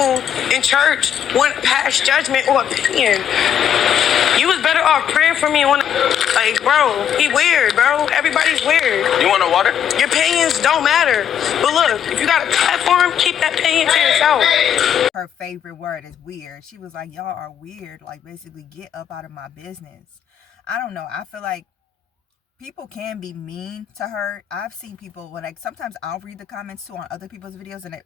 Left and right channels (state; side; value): quieter; right; 9.2 dB